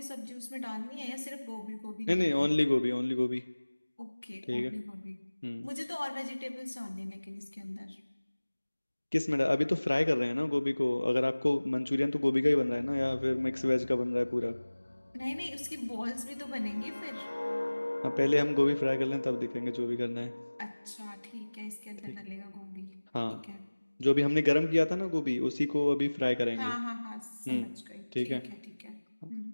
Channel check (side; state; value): both; inverted; correlation -1.00